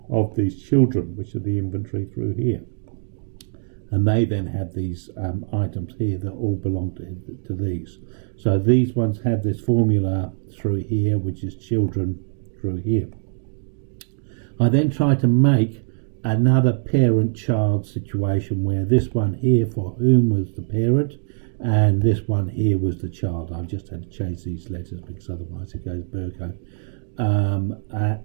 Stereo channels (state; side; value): silent; left; digital silence